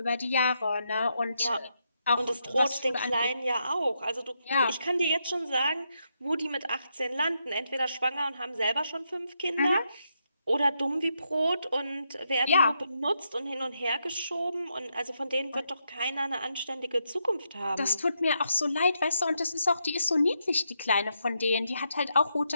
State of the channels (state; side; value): inverted; both; correlation -0.81